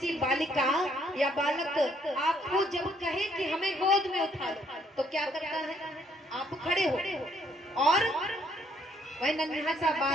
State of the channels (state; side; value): normal; both; correlation 0.68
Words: बालिका या बालक आपको जब कहे कि हमें गोद में उठा लो, तो क्या करता है? आप खड़े हो और वह नन्हा सा